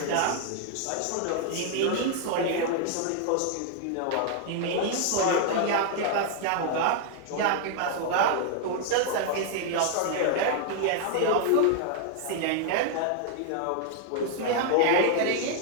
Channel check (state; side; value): different; both; correlation 0.00